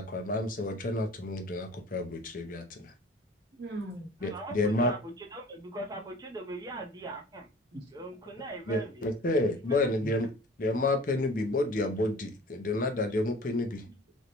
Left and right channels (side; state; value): both; normal; correlation 0.45